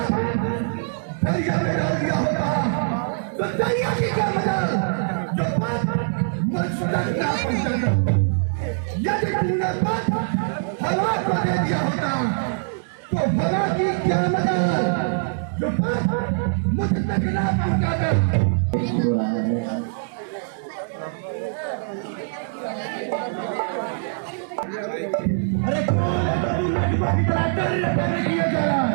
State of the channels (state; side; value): silent; left; digital silence